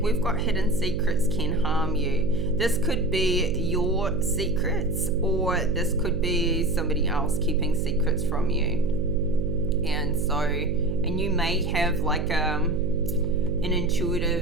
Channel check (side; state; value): right; noise; hum, 3 dB below the sound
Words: we've got hidden secrets can harm you. This could be your secrets, or this could be somebody else keeping secrets from you. And so, and you may have like an